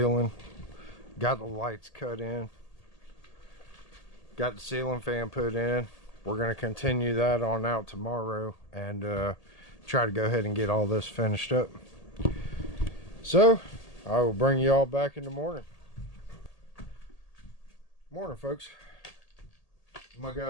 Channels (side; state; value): right; late; 1.8 ms